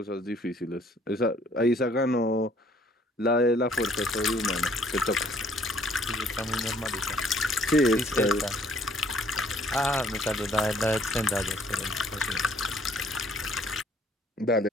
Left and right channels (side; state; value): both; normal; correlation 0.60